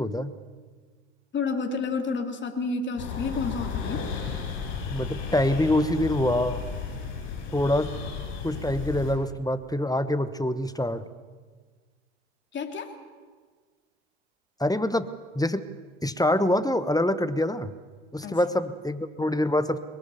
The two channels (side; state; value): both; normal; correlation 0.69